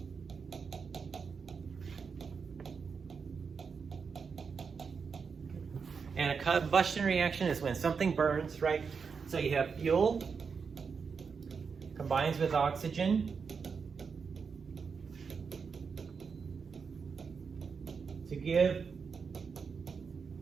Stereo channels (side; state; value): left; quieter; 5.7 dB